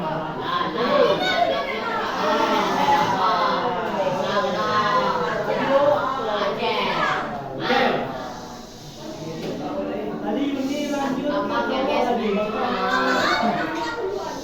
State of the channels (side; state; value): both; identical; correlation 1.00